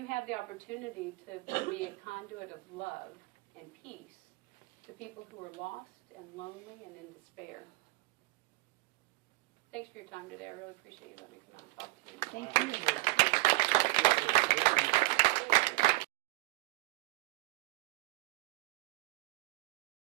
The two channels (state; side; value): quieter; left; 22.9 dB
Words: have the opportunity to be a conduit of love and peace to people who are lost and lonely and in despair. Thanks for your time today. I really appreciate you letting me come out and talk to you. Thank you.